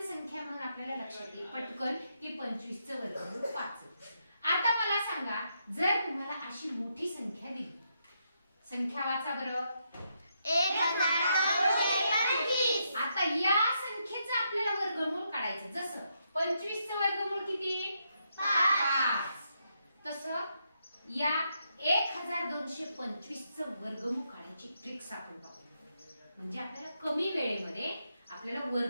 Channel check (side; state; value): both; inverted; correlation -0.80